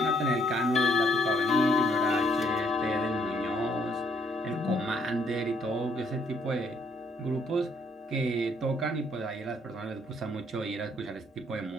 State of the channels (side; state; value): both; normal; correlation 0.68